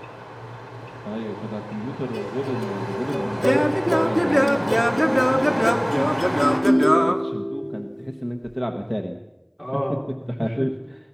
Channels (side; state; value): both; identical; correlation 1.00